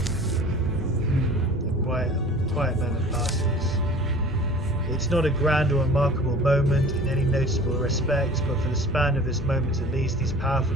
A quiet moment passes. It's not a grand or remarkable moment in any noticeable respect, but for the span of this moment at least, these powerful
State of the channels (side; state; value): both; normal; correlation 0.44